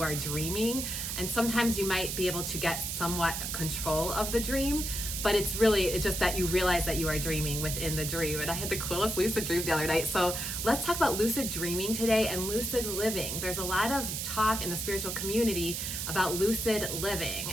are dreaming, and sometimes you might be able to get somewhat control of the dream, but it's just that you realize that you are dreaming within the dream. And I had the coolest lucid dream the other night. So let's talk about lucid dreaming today and lucid living. There's a lot of talk in the spiritual community about lucid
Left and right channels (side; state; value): right; noise; hiss, 3 dB below the sound